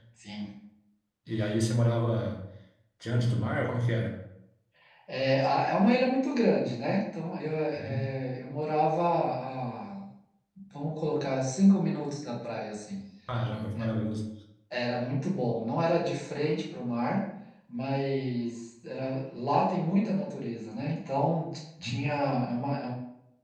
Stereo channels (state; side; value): identical; both; correlation 1.00